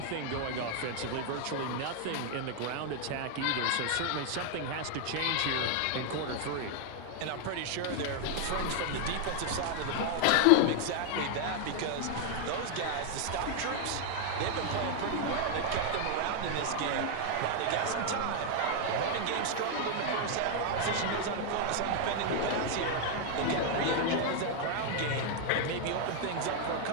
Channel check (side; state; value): both; different; correlation 0.00